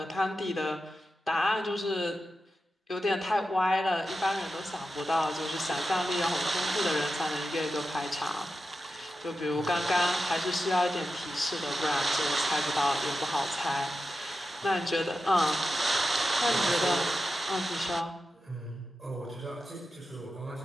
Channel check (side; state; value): both; normal; correlation 0.91